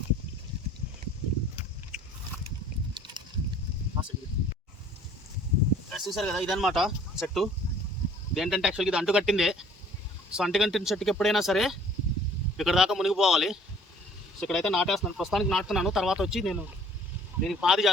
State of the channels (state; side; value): normal; both; correlation 0.54